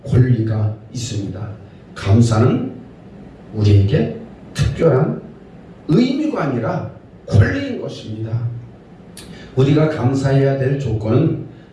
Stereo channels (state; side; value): identical; both; correlation 1.00